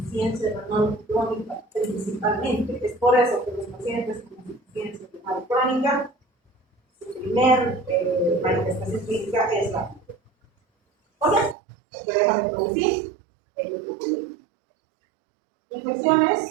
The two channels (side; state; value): left; drops out; at 11.6 s